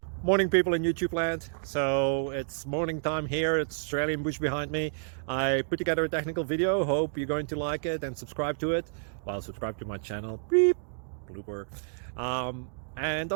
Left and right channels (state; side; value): silent; left; digital silence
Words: Morning, people in YouTube land. So it's morning time here. It's Australian bush behind me. I put together a technical video. Hope you're going to like it and subscribe to it. Well, subscribe to my channel. Beep, blooper. And